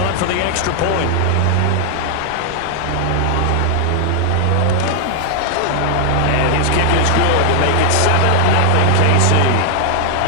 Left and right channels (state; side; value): different; both; correlation 0.00